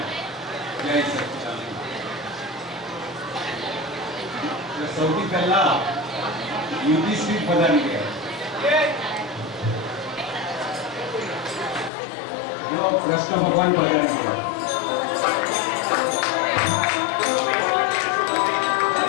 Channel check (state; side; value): drops out; right; at 11.9 s